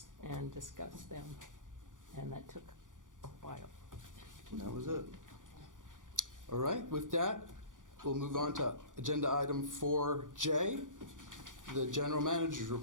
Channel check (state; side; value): late; left; 0.88 ms